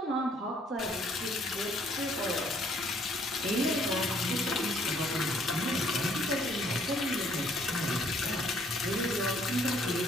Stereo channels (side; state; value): both; normal; correlation 0.64